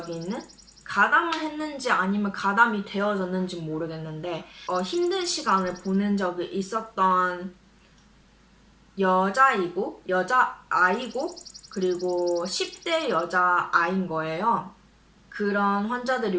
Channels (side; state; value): both; identical; correlation 1.00